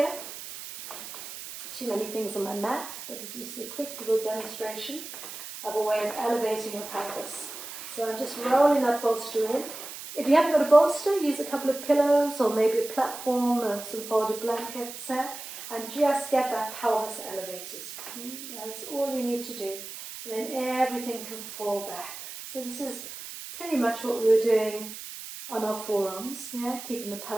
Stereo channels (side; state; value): right; noise; hiss, 11 dB below the sound